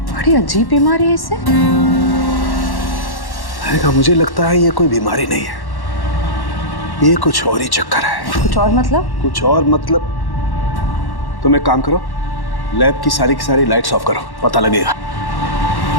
बड़ी अजीब बीमारी है इसे। मुझे लगता है ये कोई बीमारी नहीं है, ये कुछ और ही चक्कर है। कुछ और मतलब? कुछ और मतलब तुम एक काम करो, लैब की सारी लाइट्स ऑफ करो, पता लगेगा।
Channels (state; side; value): late; right; 1.1 ms